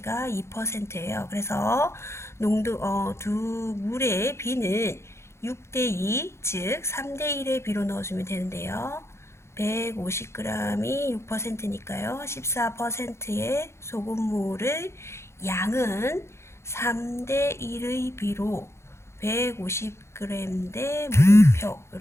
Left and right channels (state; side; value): late; right; 0.13 ms